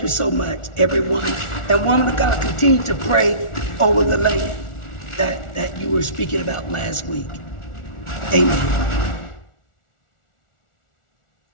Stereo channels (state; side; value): late; right; 1.4 ms